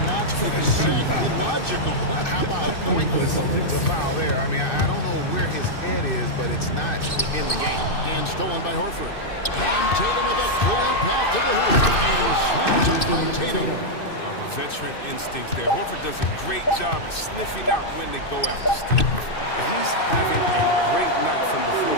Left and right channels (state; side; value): late; right; 2.6 ms